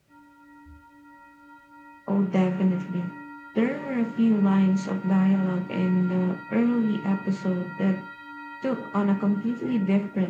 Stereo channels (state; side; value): identical; both; correlation 1.00